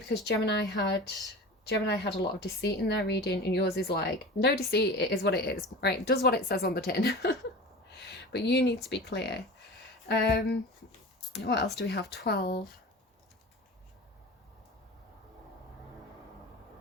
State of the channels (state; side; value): normal; both; correlation 0.34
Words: Gemini had a lot of deceit in their reading, and yours is like, no deceit, it is what it is, right? It does what it says on the tin. But you need to be clear. What else do we have? 12.